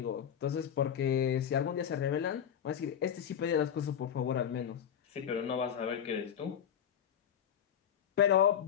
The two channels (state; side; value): quieter; right; 8.9 dB